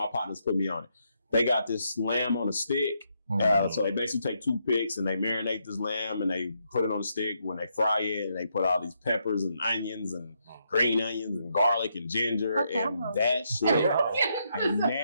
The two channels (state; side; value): inverted; both; correlation -0.78